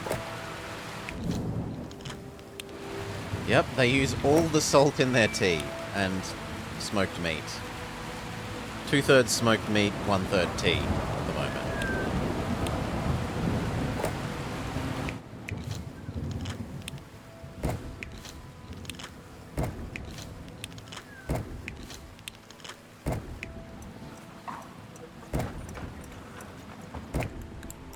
Yep, they use all the salt in their tea and smoked meat. 2/3 smoked meat, 1/3 tea at the moment.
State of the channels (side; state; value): both; identical; correlation 1.00